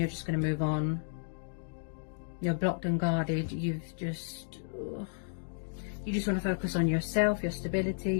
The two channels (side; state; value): right; silent; digital silence